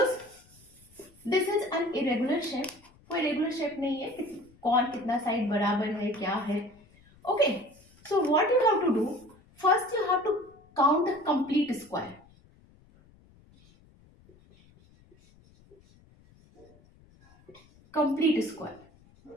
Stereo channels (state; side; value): noise; left; rumble, 28 dB below the sound